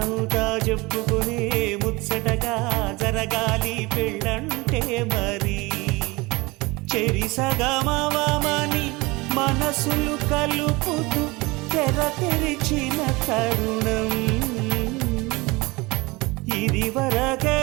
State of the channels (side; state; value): left; quieter; 23.6 dB